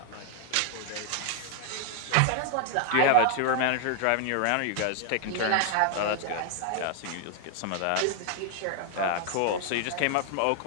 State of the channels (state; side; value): different; both; correlation 0.00